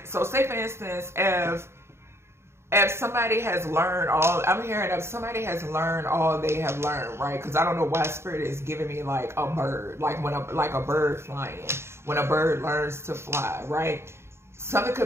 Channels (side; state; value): left; late; 0.12 ms